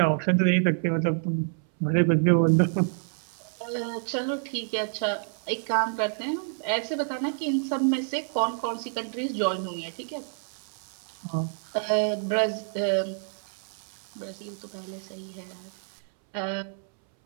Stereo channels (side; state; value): left; silent; 59 dB below the other